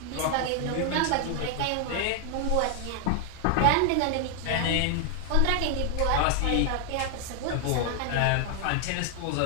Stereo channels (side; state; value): both; different; correlation 0.00